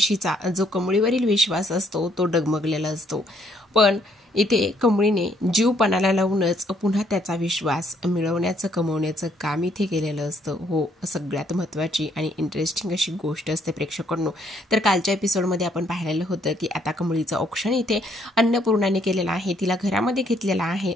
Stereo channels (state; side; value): normal; both; correlation 0.69